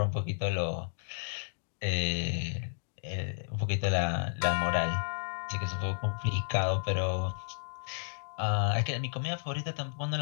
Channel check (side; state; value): right; silent; digital silence